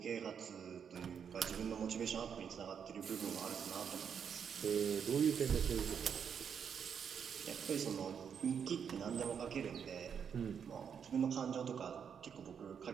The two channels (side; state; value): left; quieter; 7.4 dB